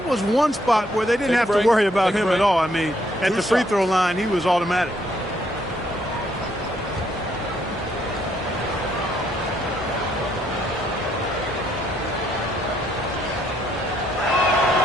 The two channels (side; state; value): both; normal; correlation 0.70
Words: was one spot where they didn't have to worry about him at all. I mean, at the free throw line, he was automatic.